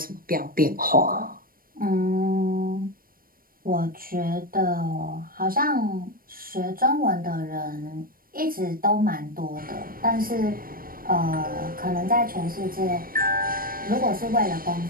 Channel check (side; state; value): left; late; 0.42 ms